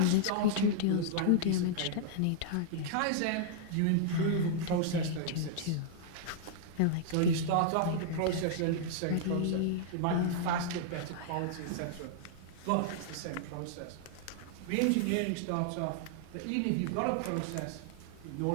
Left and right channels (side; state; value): both; different; correlation -0.01